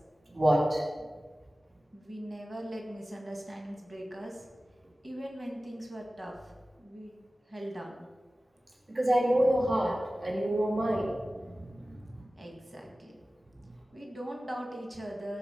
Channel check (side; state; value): both; normal; correlation 0.96